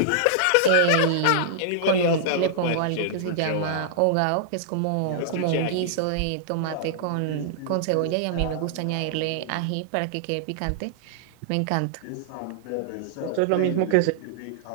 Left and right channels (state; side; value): different; both; correlation -0.01